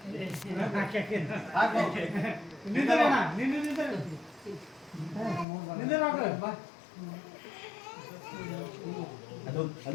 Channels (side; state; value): right; drops out; at 5.5 s